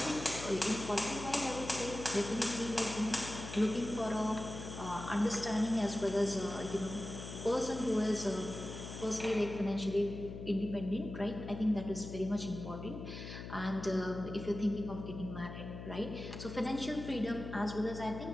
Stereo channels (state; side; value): noise; left; hum, 9 dB below the sound